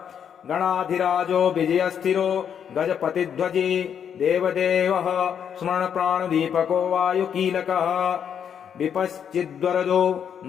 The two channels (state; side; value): quieter; right; 8.2 dB